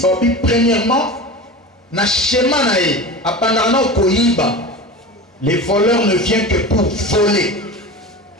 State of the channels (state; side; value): normal; both; correlation 0.30